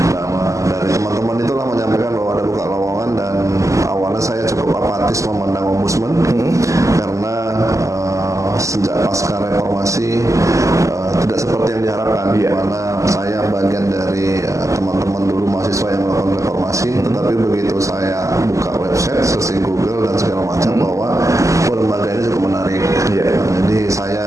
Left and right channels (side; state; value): left; late; 0.16 ms